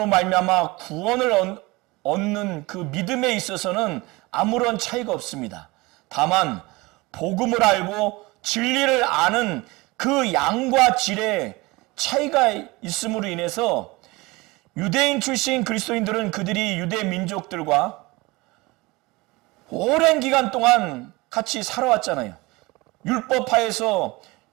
말미암아 구원을 얻는 그 믿음에 있어서는 아무런 차이가 없습니다. 다만 복음을 알고 진리를 아는 그 양과 질의 차이가 있음으로 인해서 유대인 출신 그리스도인들은 그들이 유대 민족들과 오랜 기간 동안 같이 살아왔잖아요. 율법하에서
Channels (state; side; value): quieter; left; 22.8 dB